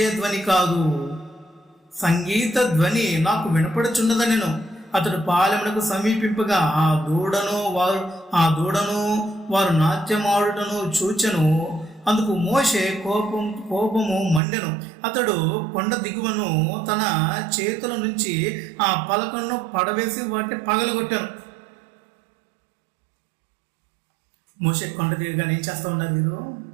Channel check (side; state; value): left; drops out; at 14.4 s